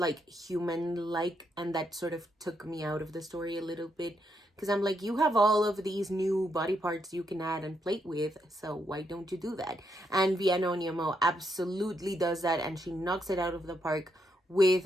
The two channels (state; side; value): normal; both; correlation 0.79